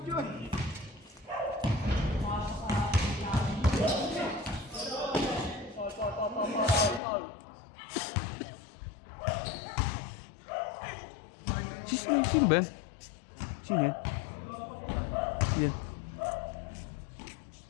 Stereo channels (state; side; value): drops out; right; at 7.0 s